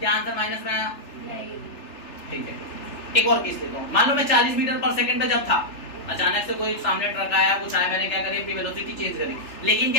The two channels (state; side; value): late; right; 3.4 ms